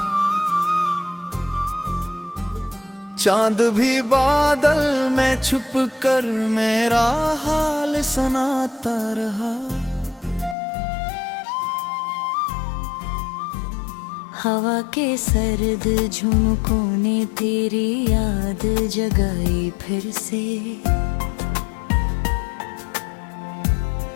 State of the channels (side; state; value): right; drops out; at 10.6 s